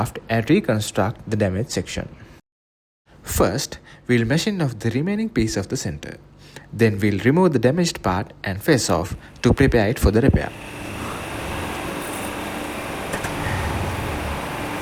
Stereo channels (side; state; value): both; identical; correlation 1.00